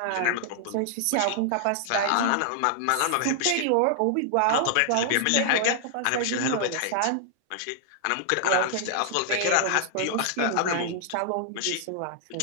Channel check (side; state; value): both; different; correlation 0.00